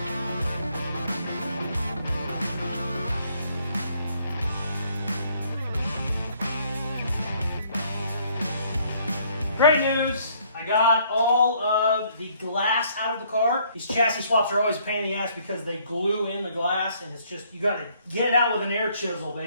Great news. I got all of the glass out of the car. These chassis swaps are always a pain in the ass because they glue in the glass, and it's just, you gotta get it out with an air chisel,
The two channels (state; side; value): inverted; both; correlation -0.65